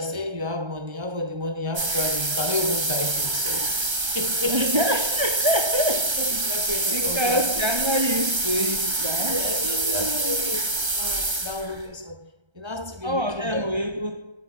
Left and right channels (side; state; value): left; late; 1.3 ms